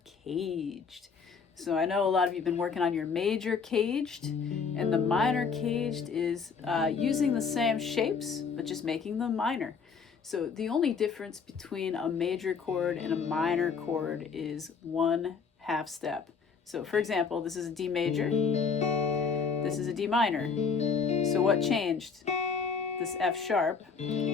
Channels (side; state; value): right; quieter; 5.6 dB